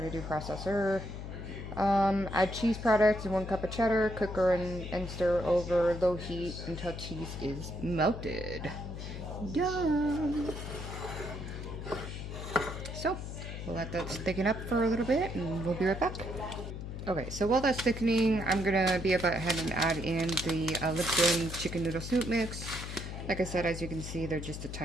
to do processor. Add cheese products and 1 cup of cheddar. Cook and stir over low heat until cheese is melted. Yum! So, we'll let that thicken up for a little bit and we'll be right back. Okay, so while that's thickening, I'm going to be about ahead and add in the Linton chicken noodle soup mix. Like I said, as you can see, they're just a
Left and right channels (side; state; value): left; noise; hum, 7 dB below the sound